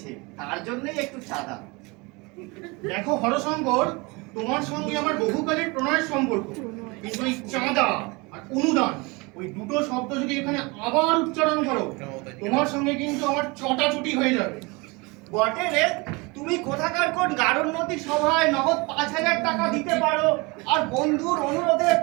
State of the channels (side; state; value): left; quieter; 26.4 dB